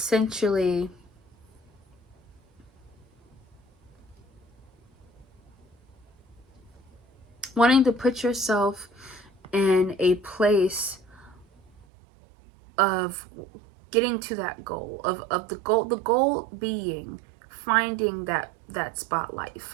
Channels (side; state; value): left; drops out; at 11.7 s